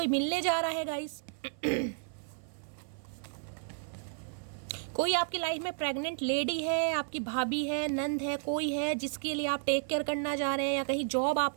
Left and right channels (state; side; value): silent; left; 55 dB below the other